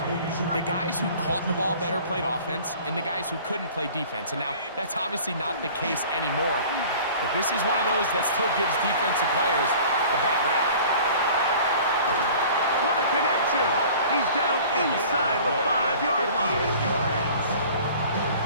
The guys who caught the ball better played offense, and the guys who couldn't play defense. And now, that's obviously not the case anymore. But this is one of those that still gives defensive players a bad rap. What a connection! He's down inside the 5-yard line.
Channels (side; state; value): both; inverted; correlation -0.46